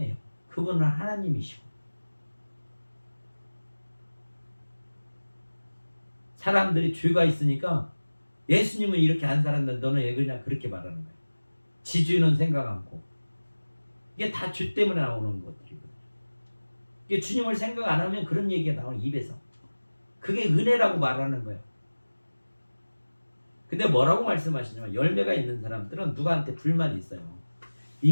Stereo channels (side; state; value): both; inverted; correlation -1.00